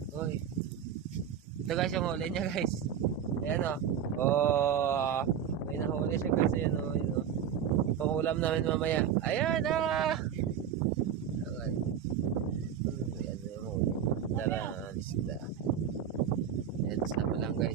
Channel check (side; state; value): left; quieter; 8.7 dB